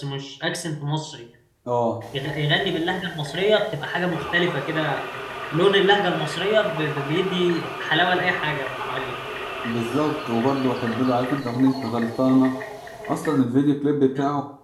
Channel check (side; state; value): both; identical; correlation 1.00